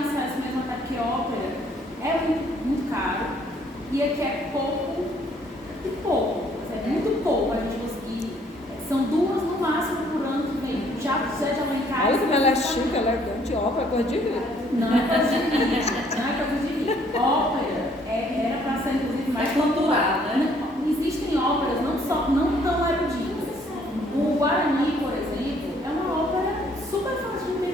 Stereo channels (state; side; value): normal; both; correlation 0.63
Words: mesmo, até porque ópera é muito caro e aqui é pouco, é muito pouco a gente conseguir. São 2 no máximo por ano que vem. Já lá em casa. Olha como ela é chique, ela é grande, ópera, coisa de rir. Não é coisa de rir. Ópera era para ser inclusive mais cultural, né? Existem óperas não tão eruditas. O Guarani, por exemplo, é uma ópera super fácil de